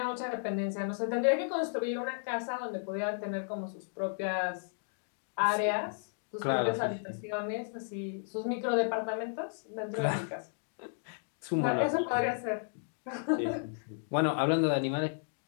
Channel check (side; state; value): right; silent; digital silence